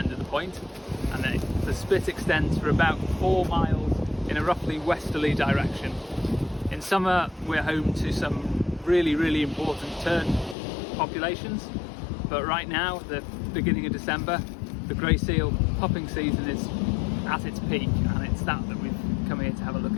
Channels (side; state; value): right; drops out; at 10.6 s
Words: of the point, and the spit extends for about 4 miles in a roughly westerly direction. In summer we're home to some really important tern populations, but right now, the beginning of December, the grey seal pupping season is at its peak, and it's that we've come here to have a look